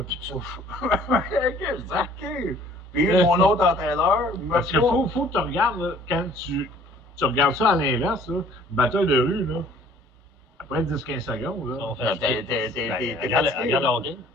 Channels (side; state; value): both; normal; correlation 0.54